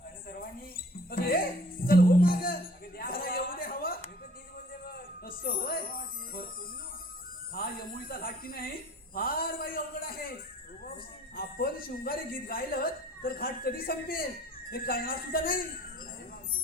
आणि सर्वांनी अगं ये चल हो माग द्या जरा येऊ दे हवा. मी पण तीच बोलते बघ. असं होय. बरं पोरीनो, हा यमुळीचा घाट की नाही फार बाई अवघड आहे. आपण शृंगारी गीत गायलं तर घाट कधी संपेल हे कळणार सुद्धा नाही.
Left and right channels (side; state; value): both; normal; correlation 0.52